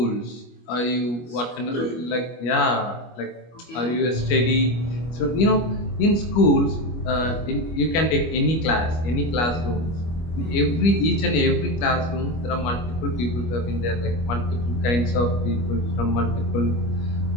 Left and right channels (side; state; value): right; late; 25 ms